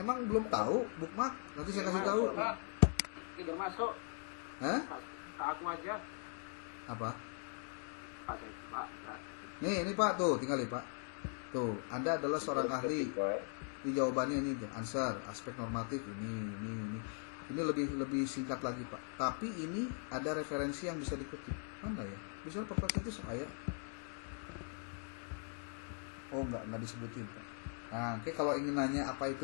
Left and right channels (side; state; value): right; silent; 51 dB below the other